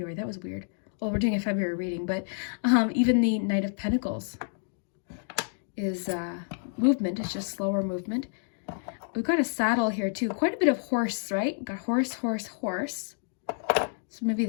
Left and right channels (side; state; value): right; silent; 56 dB below the other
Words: That was weird. Well, we're doing a February reading, but even the Knight of Pentacles is movement. It's just slower movement. We've got a saddle here too. Quite a bit of horse, right? We've got horse, horse, horse. So maybe